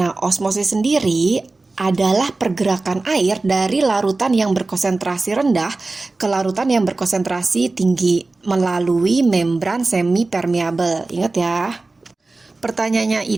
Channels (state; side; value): quieter; left; 3.4 dB